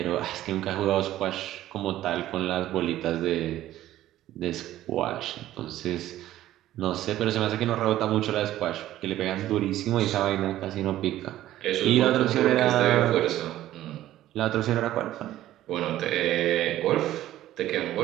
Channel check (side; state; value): left; quieter; 13.8 dB